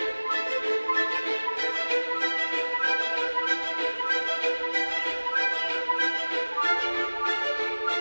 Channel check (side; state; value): both; inverted; correlation -1.00